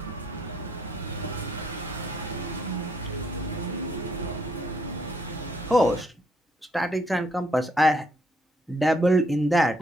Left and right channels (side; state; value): both; normal; correlation 0.70